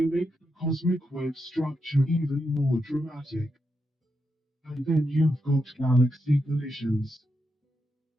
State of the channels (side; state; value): both; normal; correlation 0.84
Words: make the cosmic web structure even more dramatic. And then you've got galaxy collisions.